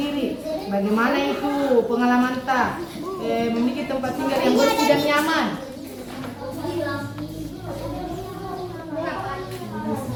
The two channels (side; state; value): both; identical; correlation 1.00